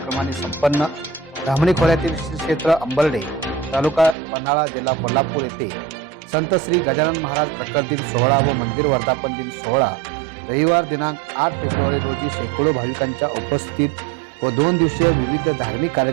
संपन्न. धामणी खोऱ्यातील श्री क्षेत्र अंबर्डे, तालुका पन्हाळा, जिल्हा कोल्हापूर येथे संत श्री गजानन महाराज प्रकट दिन सोहळा व मंदिर वर्धापन दिन सोहळा रविवार दिनांक 8 फेब्रुवारी रोजी शेकडो भाविकांच्या उपस्थितीत व 2 दिवसीय विविध धार्मिक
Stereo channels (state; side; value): drops out; left; at 4.2 s